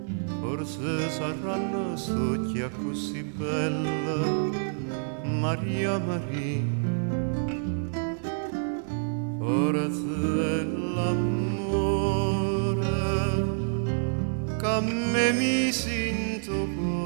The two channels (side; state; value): left; silent; digital silence